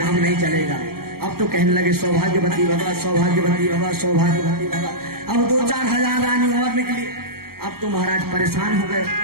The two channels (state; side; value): late; left; 0.94 ms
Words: नहीं चलेगा। अब तो कहने लगे सौभाग्यवती भवा, सौभाग्यवती भवा, सौभाग्यवती भवा। अब 2-4 हजार रानी और निकली। अब तो महाराज परेशान हो गए